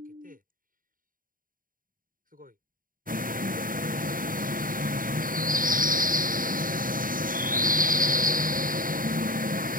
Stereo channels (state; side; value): late; left; 0.40 ms